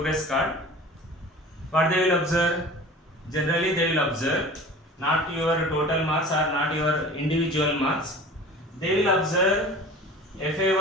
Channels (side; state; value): both; normal; correlation 0.40